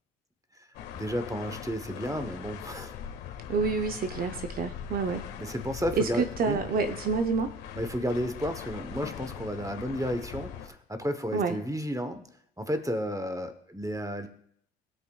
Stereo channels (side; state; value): both; normal; correlation 0.52